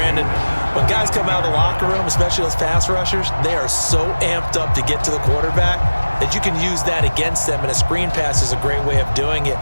when guys come out of the locker room, especially those pass rushers, they are so amped up to get to the quarterback that you can use that against them, and a screen pass is a great way of doing it.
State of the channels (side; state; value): both; inverted; correlation -1.00